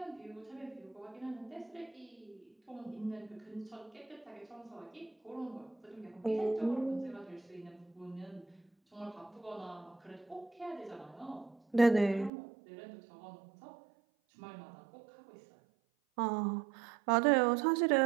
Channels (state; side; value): drops out; left; at 12.3 s